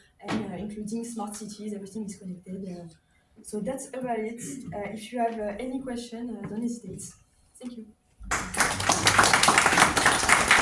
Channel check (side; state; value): both; identical; correlation 1.00